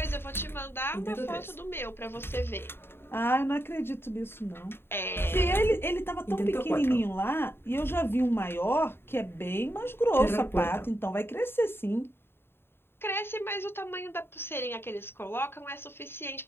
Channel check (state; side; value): late; right; 0.11 ms